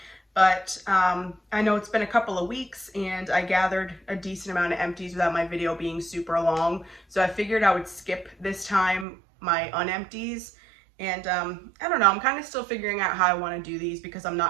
But I know it's been a couple of weeks and I gathered a decent amount of empties without my video being super long. So I figured I would skip this time my unempties. And I don't know, I'm kind of still figuring out how I want to do these because I'm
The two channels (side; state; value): left; drops out; at 9.1 s